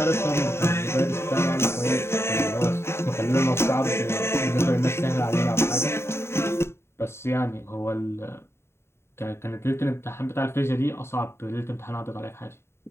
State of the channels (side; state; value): right; late; 0.12 ms